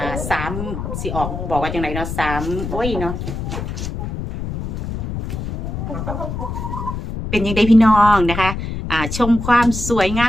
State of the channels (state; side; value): noise; left; rumble, 5 dB below the sound